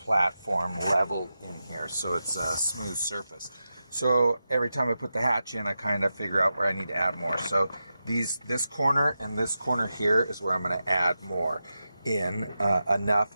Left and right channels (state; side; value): inverted; both; correlation -0.90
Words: level in here so it's a smooth surface. So every time I put the hatch in, I kind of figure out where I need to add more. So this corner and this corner here is where I'm going to add more in enough,